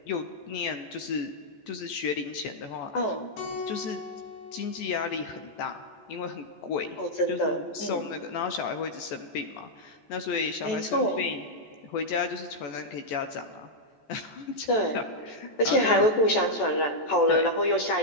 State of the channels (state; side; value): late; right; 14 ms